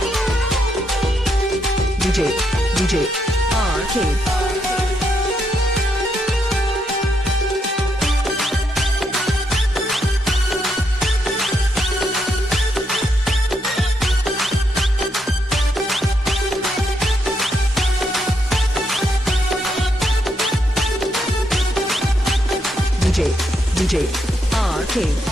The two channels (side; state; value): both; normal; correlation 0.78